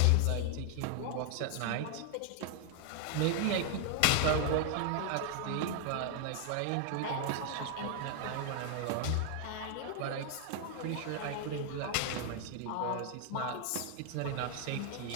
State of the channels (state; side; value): different; both; correlation 0.00